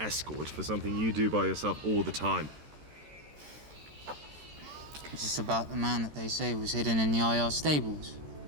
for something you do by yourself all the time? Is this about the man that they say was hidden in the IR stables?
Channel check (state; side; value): late; left; 13 ms